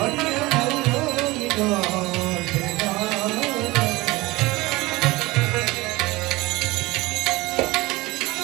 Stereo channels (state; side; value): quieter; left; 21.1 dB